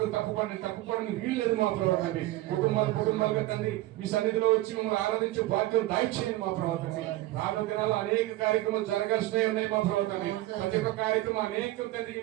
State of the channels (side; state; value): left; quieter; 17.1 dB